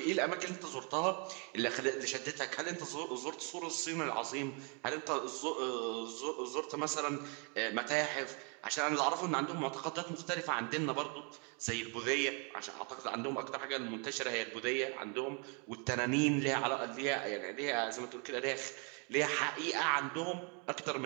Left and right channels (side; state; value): left; quieter; 35.6 dB